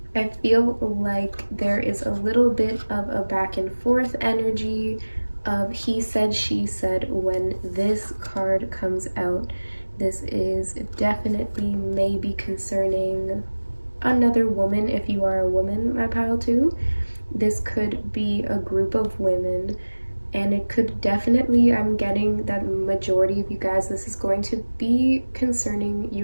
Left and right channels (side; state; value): both; inverted; correlation -1.00